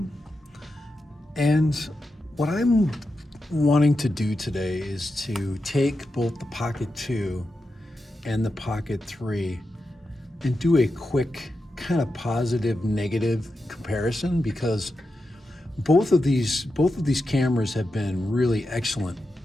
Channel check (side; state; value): both; normal; correlation 0.89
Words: And what I'm wanting to do today is to take both the Pocket 2 and the Pocket 3 and do a quick kind of positive negative comparison, because both of these cameras have been really excellent.